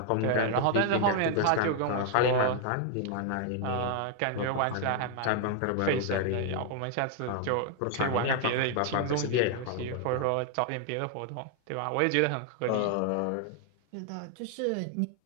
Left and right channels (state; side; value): different; both; correlation 0.00